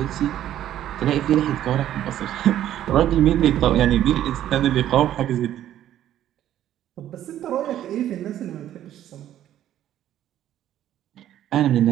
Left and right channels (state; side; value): quieter; left; 11.9 dB